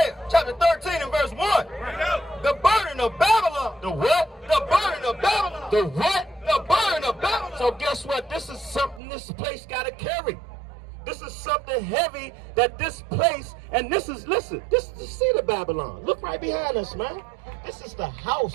chapter 13 and verse 1. The burden of Babylon. The what? The burden of Babylon. The what? The burden of Babylon. So guess what? This is something this place got to carry. This is something heavy that this place, and this is, listen, this is the seat of Babylon. Look right behind us, man. This is the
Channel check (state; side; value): drops out; left; at 9.0 s